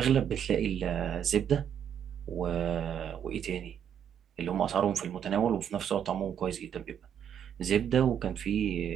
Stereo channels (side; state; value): left; quieter; 8.7 dB